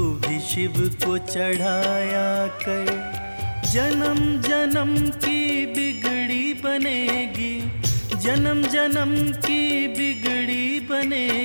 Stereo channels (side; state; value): both; inverted; correlation -1.00